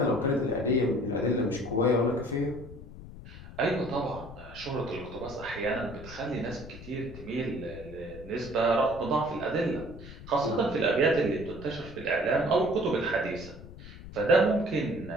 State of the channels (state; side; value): noise; left; rumble, 15 dB below the sound